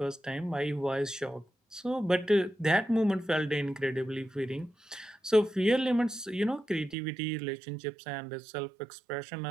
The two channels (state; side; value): drops out; left; at 7.0 s